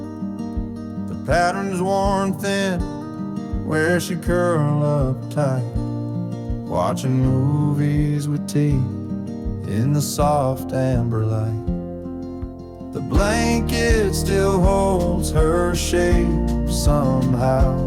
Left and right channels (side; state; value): both; identical; correlation 1.00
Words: The pattern's worn thin where she curl up tight, watching movies with tea in the soft amber light. The blanket still holds her shape